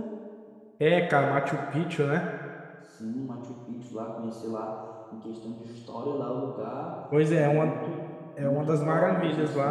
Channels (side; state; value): both; identical; correlation 1.00